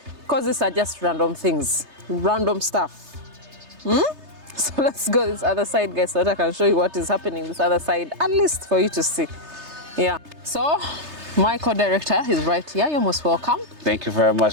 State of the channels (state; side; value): late; left; 3.3 ms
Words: because these are just random things, random stuff. So let's go this other side, guys, so that I can show you what is happening this other side, at least for you to see. Yeah. So my co-director is right here. You're most welcome. Thank you very